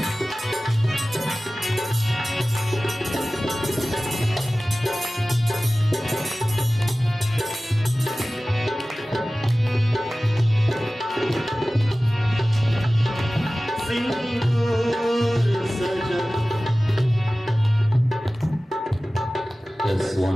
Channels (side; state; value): both; normal; correlation 0.97